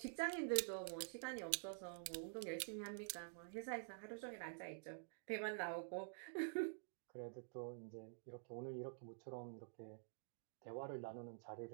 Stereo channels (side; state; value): left; silent; digital silence